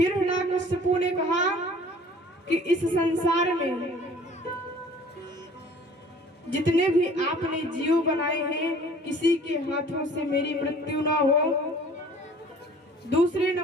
हिरण्याकश्यपु ने कहा कि इस संसार में जितने भी आपने जीव बनाए हैं किसी के हाथों से मेरी मृत्यु ना हो। दूसरे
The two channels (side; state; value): both; normal; correlation 0.50